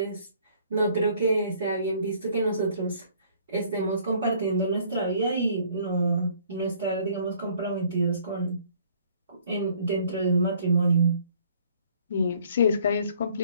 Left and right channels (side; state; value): both; inverted; correlation -0.59